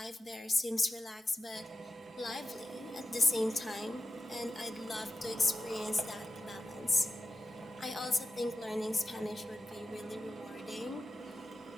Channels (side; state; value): both; normal; correlation 0.91